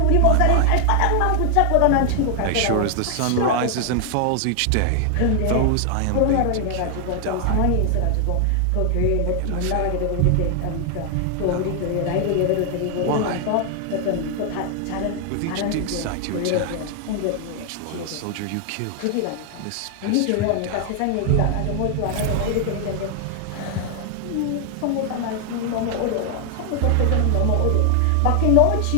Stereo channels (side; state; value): both; different; correlation 0.00